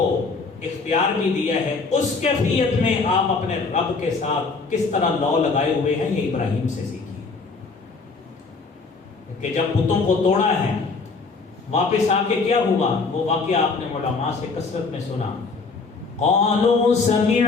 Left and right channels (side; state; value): right; quieter; 4.3 dB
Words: اختیار بھی دیا ہے، اس کیفیت میں آپ اپنے رب کے ساتھ کس طرح لو لگائے ہوئے ہیں، یہ ابراہیم سے سیکھیے. کہ جب بتوں کو توڑا ہے، واپس آ کے کیا ہوا، وہ واقعہ آپ نے علماء سے کثرت میں سنا. قالوا